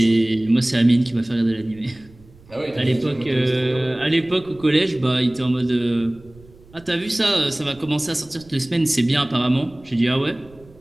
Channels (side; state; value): right; noise; rumble, 25 dB below the sound